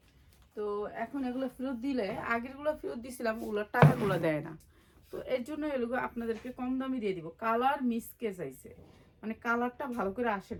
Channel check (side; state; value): both; identical; correlation 1.00